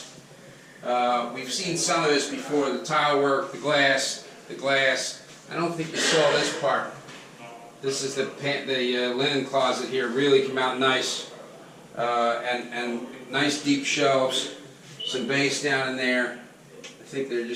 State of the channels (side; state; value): both; identical; correlation 1.00